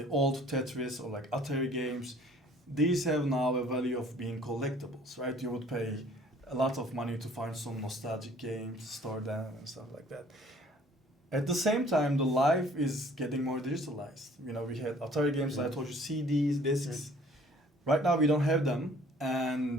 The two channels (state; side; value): normal; both; correlation 0.55